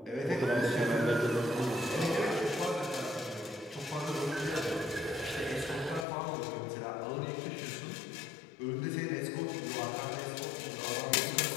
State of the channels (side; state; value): right; drops out; at 6.1 s